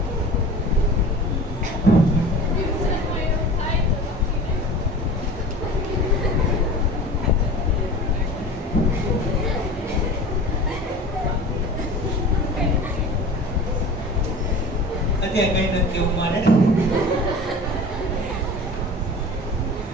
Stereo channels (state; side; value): normal; both; correlation 0.37